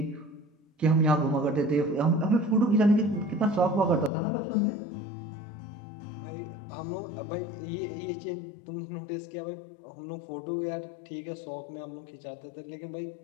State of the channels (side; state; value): right; drops out; at 4.1 s